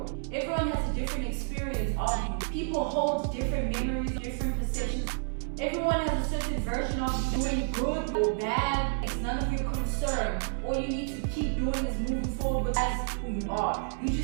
Everyone has a different experience of you. People hold different memories, different perceptions. Everyone has a certain version of you, doing good or bad. It's none of your concern. All you need to keep doing is moving forward with as who you are. You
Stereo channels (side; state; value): left; silent; 58 dB below the other